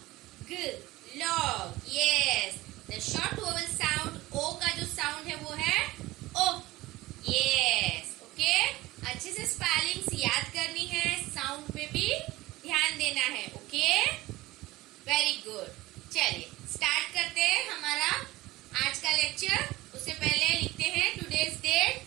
ग, log, yes. The short vowel sound o का जो साउंड है वो है ओ, यस, ओके। अच्छे से स्पेलिंग्स याद करनी है, साउंड पे भी ध्यान देना है, ओके, वेरी गुड। चलिए स्टार्ट करते हैं हमारा आज का लेक्चर। उससे पहले लिखते हैं today's date.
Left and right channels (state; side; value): quieter; left; 18.6 dB